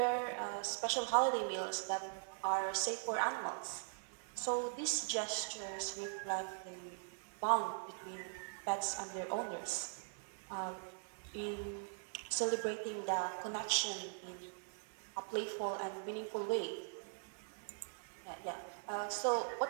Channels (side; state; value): left; silent; digital silence